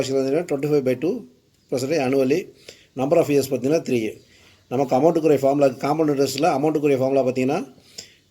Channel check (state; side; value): identical; both; correlation 1.00